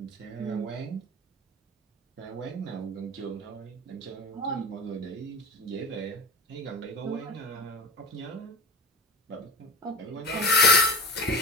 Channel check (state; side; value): normal; both; correlation 0.31